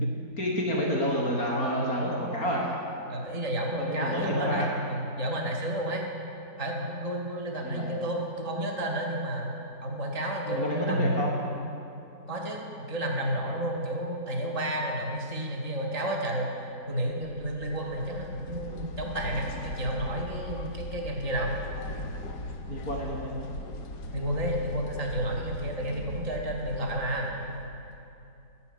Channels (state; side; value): late; right; 3.9 ms